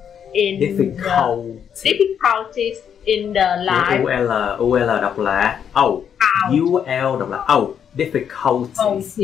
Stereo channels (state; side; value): quieter; right; 8.2 dB